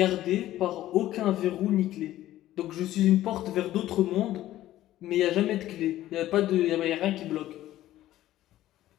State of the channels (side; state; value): right; quieter; 14.2 dB